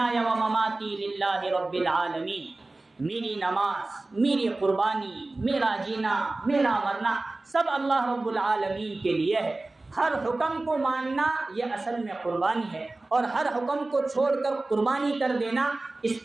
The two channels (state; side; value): quieter; left; 3.1 dB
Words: ومماتی للہ رب العالمین. میری نماز، میری قربانی، میرا جینا، میرا مرنا سب اللہ رب العالمین کے لیے ہے. ہر حکم کو ماننا یہ اصل میں قربانی ہے، اور ہر حکم کو چھوڑ کر قربانی کر دینا اس